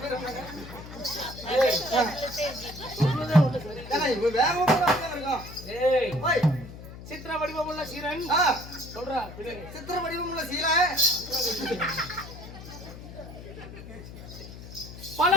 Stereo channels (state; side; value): noise; left; hum, 13 dB below the sound